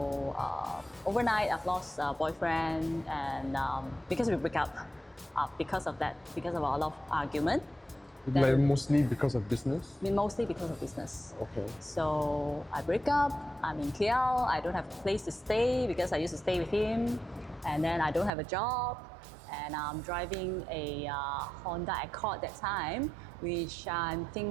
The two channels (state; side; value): drops out; left; at 18.3 s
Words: overnight, I've lost a boyfriend, and because we break up, because of that, because of a lot of argument. Like mostly because of business? Mostly because of business. Okay. So I break up, I'm in KL, I don't have a place to stay because I used to stay with him, and then I don't have a job, and I'm driving a Honda Accord that time, which I'm